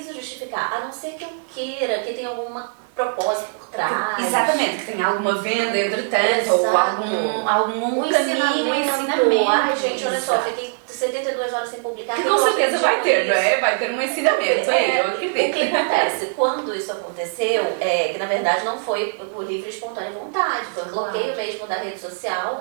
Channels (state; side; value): silent; left; digital silence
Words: justificar, a não ser que eu queira, que tenha alguma propósito por trás. Exatamente, que tenha alguma venda entretanto, ou algum ensinamento. Ai, gente, olha só, fiquei 72 horas sem publicar. Que com certeza vai ter, não é? Vai ter um ensinamento. Eu acredito. O que acontece? Quando isso aconteceu, que na verdade não foi por livre e espontânea vontade, foi um bloqueio mesmo da rede